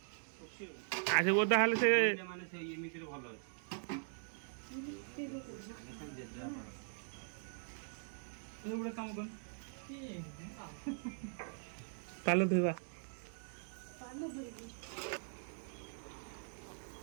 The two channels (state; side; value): silent; left; digital silence